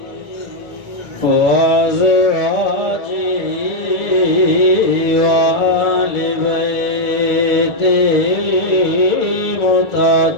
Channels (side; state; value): right; late; 2.3 ms